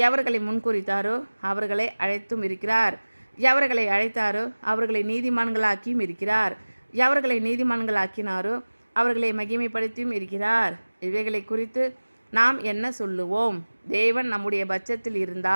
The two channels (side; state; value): both; inverted; correlation -1.00